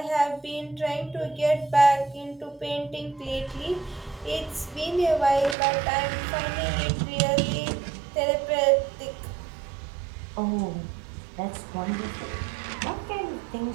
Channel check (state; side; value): drops out; left; at 5.6 s